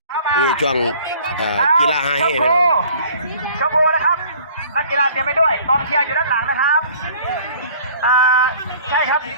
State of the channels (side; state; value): both; inverted; correlation -0.51